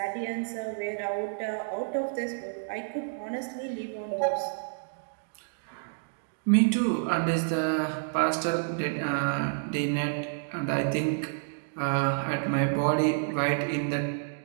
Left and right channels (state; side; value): silent; left; digital silence